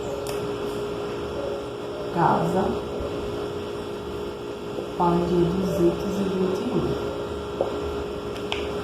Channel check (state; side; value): identical; both; correlation 1.00